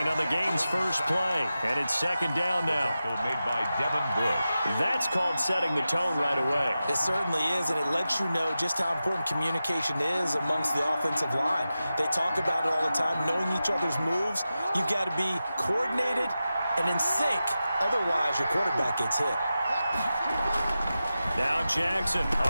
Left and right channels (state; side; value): inverted; both; correlation -0.93